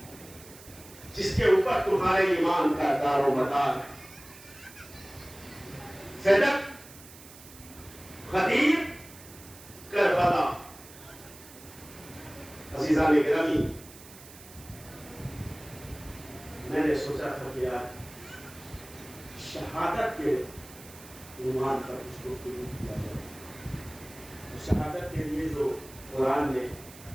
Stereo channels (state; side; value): noise; right; hiss, 19 dB below the sound